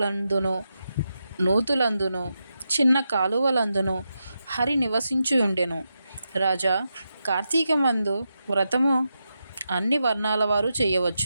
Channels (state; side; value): inverted; both; correlation -0.87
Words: నూతులందును చిన్న కాలువలందును హరి నివసించి ఉండెను. రాజా, కార్తీకమందు వ్రతము అన్ని వర్ణాల వారు